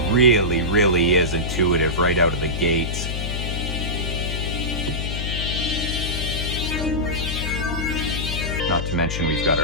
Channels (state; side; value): noise; left; hum, 3 dB below the sound